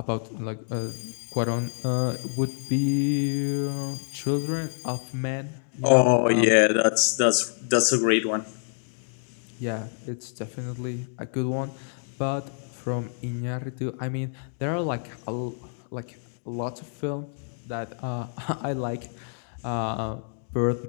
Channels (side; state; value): right; silent; digital silence